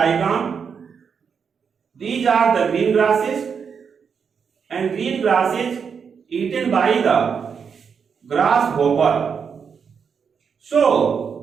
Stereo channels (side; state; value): left; quieter; 6.4 dB